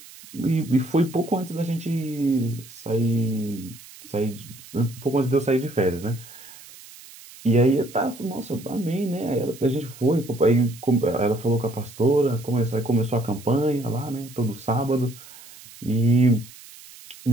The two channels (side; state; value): right; noise; hiss, 19 dB below the sound